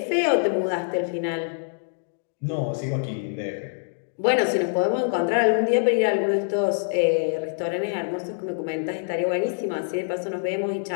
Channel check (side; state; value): right; silent; digital silence